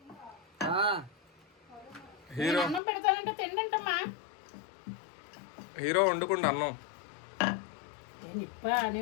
హీరో అన్నం పెడతానంటే తిండంటమ్మా. హీరో వండుకుంటా అన్నం.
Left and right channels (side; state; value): right; drops out; at 2.8 s